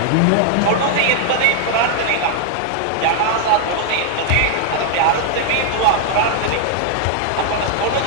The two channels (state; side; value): different; both; correlation 0.00